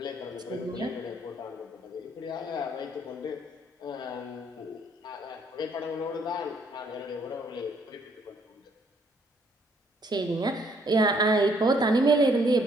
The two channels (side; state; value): both; normal; correlation 0.67